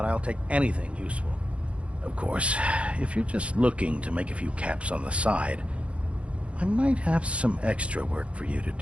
I'll take anything useful. Of course, if you're just looking to make a few caps on the side, I might have some extra work for you to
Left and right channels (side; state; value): left; late; 0.061 ms